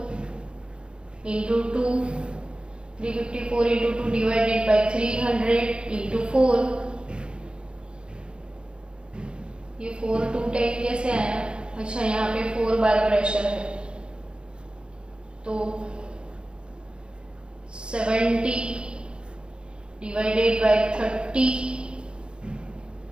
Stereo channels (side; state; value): left; late; 0.053 ms